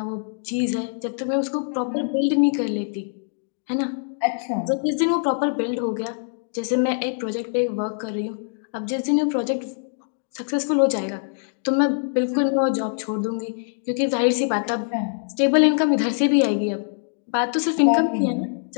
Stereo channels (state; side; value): silent; right; digital silence